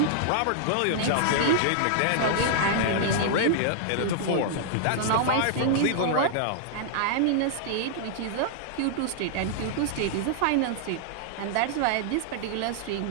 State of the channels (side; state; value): both; different; correlation -0.01